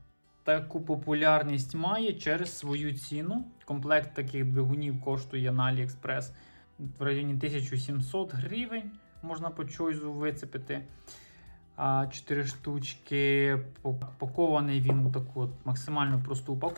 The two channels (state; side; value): inverted; both; correlation -1.00